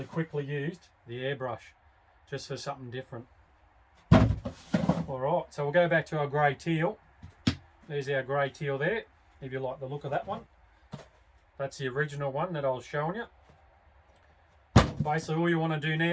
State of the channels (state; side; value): identical; both; correlation 1.00